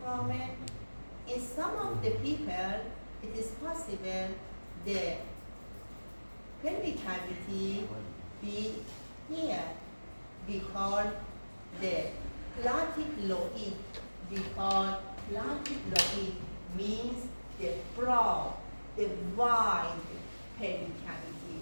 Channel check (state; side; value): inverted; both; correlation -1.00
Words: foramen. In some of the people, it is possible the pelvic cavity be here. We call the platyploid. We call platyploid means the broad, the wide pelvic cavity.